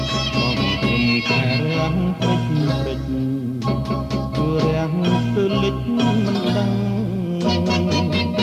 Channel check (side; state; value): both; identical; correlation 1.00